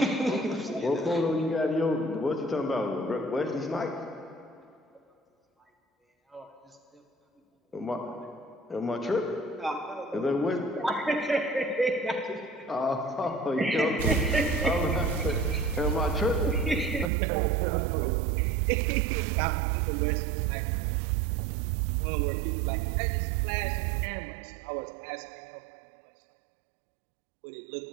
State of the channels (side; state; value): left; drops out; at 17.1 s